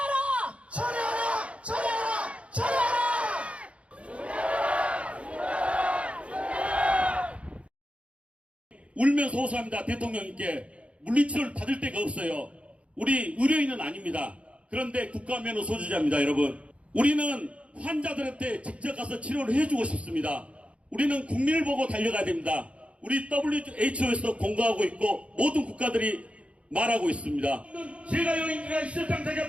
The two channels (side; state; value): left; late; 0.062 ms